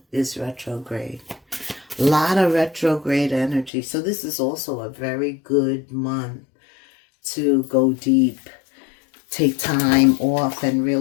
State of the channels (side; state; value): right; drops out; at 3.7 s